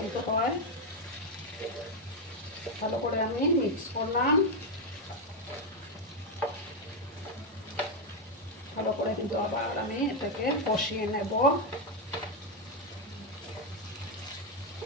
হয়। ভালো করে আমি মিক্স করলাম, ভালো করে কিন্তু আবার আমি এটাকে কষিয়ে নেব।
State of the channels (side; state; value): both; normal; correlation 0.04